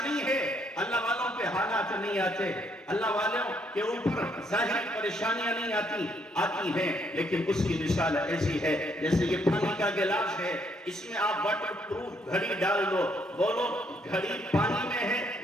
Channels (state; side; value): normal; both; correlation 0.71